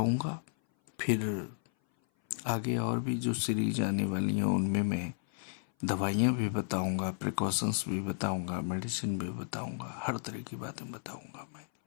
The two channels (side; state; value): right; silent; 56 dB below the other